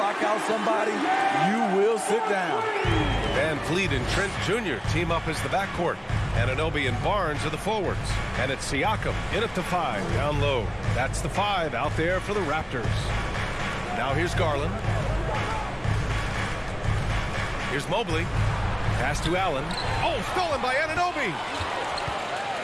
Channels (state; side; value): identical; both; correlation 1.00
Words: out somebody, you will sit down. Van Vliet and Trent Jr. team up as the backcourt. Anunoby and Barnes are the forwards. And it's Siakam in at the 5, down low. That's the 5 out there for the Raptors. Now here's Garland. Here's Mobley. Pass to Allen. Oh, stolen by Anunoby.